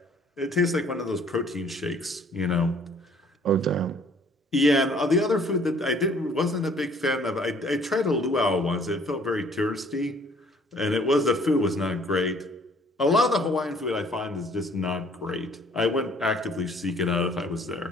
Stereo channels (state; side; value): normal; both; correlation 0.58